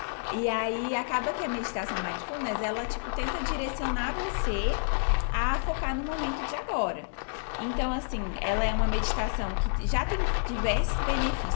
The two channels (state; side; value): silent; right; digital silence